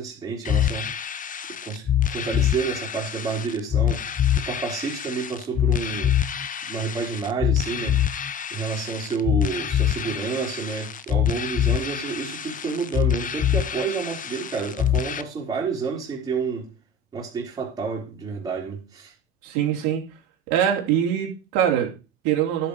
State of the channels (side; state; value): both; normal; correlation 0.38